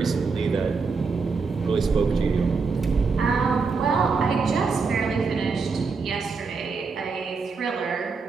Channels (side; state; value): left; quieter; 4.8 dB